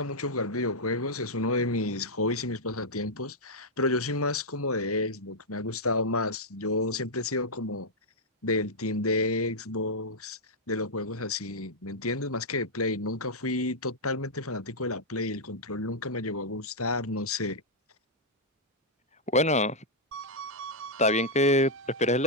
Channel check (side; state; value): both; normal; correlation -0.06